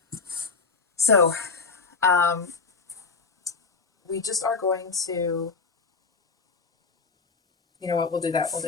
So, we just are going to, you know what, we'll do that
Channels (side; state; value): right; quieter; 4.6 dB